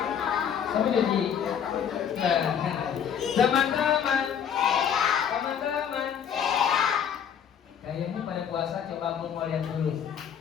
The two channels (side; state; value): right; quieter; 8.3 dB